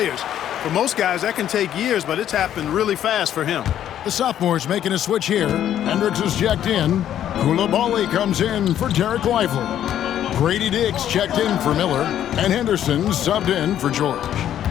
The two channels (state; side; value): quieter; right; 10.8 dB